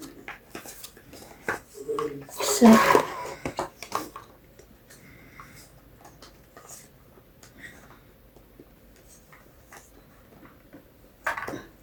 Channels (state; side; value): identical; both; correlation 1.00